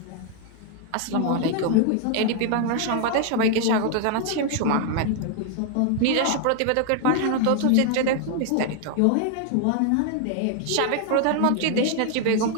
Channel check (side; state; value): both; different; correlation 0.00